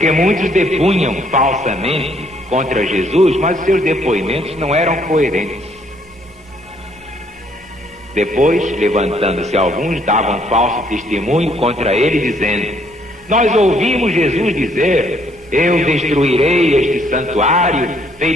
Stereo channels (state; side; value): normal; both; correlation 0.67